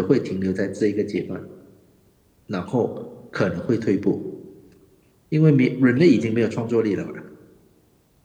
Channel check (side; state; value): both; identical; correlation 1.00